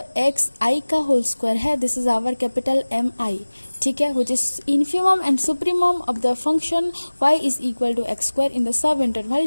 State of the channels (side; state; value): both; inverted; correlation -1.00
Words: एक्स आई का होल स्क्वायर है, this is our capital M i, ठीक है, which is infimum and supremum of the function y is equal to x square in the sub